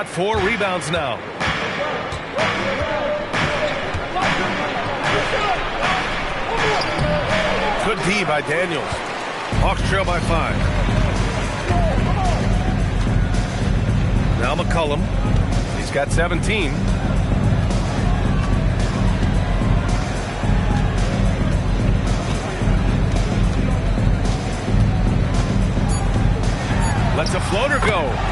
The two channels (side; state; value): both; identical; correlation 1.00